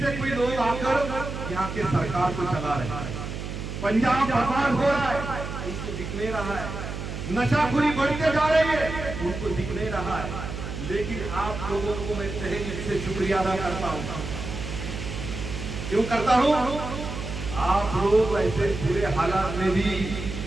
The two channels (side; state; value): right; noise; hum, 7 dB below the sound